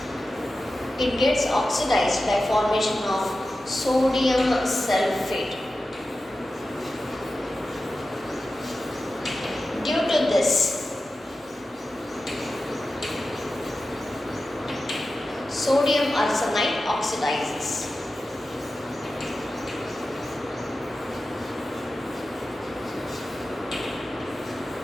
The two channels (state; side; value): normal; both; correlation 0.93